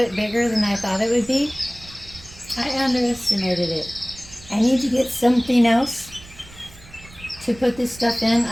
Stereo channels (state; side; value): noise; right; rumble, 20 dB below the sound